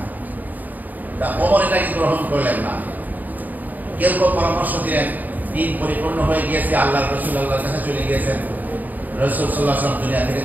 তা ওমর এটাকে গ্রহণ করলেন না। কেউ কেউ পরামর্শ দিলেন দিন পরিপূর্ণ হয়ে গিয়েছে, আল্লাহ রাসূল আল্লাহর কাছে চলে গিয়েছেন, রাসূল সাল্লাল্লাহু আলাইহি ওয়াসাল্লাম দুনিয়া থেকে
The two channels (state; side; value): late; left; 0.083 ms